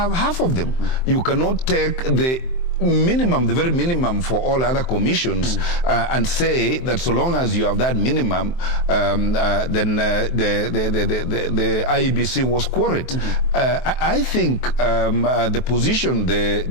half of them. You cannot take the minimum, the very minimum for all other commissions, and say that so long as you have that minimum, then the IEBC was quorate. I think the position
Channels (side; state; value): right; late; 23 ms